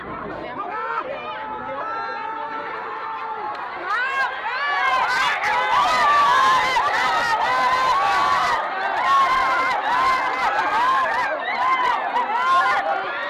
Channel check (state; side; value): identical; both; correlation 1.00